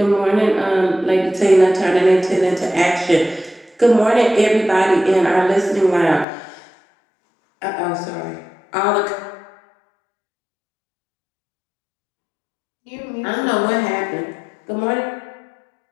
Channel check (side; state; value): right; drops out; at 6.2 s